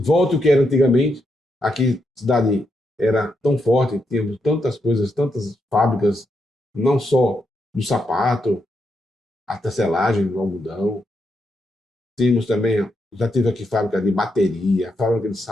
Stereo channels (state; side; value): normal; both; correlation 0.82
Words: o que era antigamente. Aqui, a cidade era tão forte, tínhamos tantas coisas, tantas fábricas, não só do sapato, a tecelagem, do algodão. Tínhamos também, já tive aqui fábrica de bateria, fábrica de